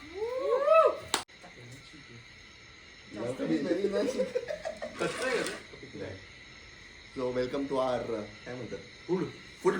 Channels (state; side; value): identical; both; correlation 1.00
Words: सो वेलकम टू आवर काय म्हणतात फूड